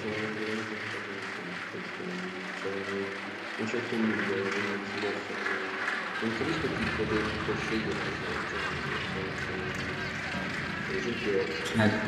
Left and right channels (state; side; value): identical; both; correlation 1.00